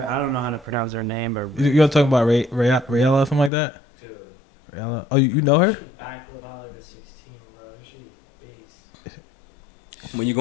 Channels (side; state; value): right; drops out; at 3.5 s